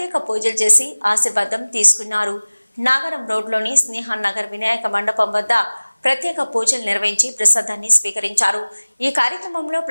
పూజలు చేసి ఆశీర్వాదం తీసుకున్నారు. నాగరం రోడ్లోని స్నేహన్ నగర్ వినాయక మండపం వద్ద ప్రత్యేక పూజలు నిర్వహించి ప్రసాదాన్ని స్వీకరించారు. ఈ కార్యక్రమంలో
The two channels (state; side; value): inverted; both; correlation -1.00